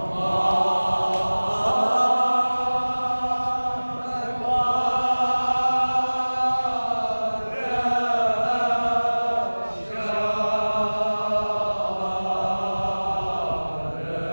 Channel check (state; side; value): inverted; both; correlation -1.00